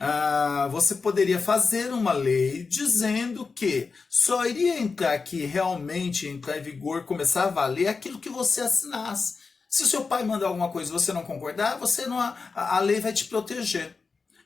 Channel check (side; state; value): right; quieter; 4.6 dB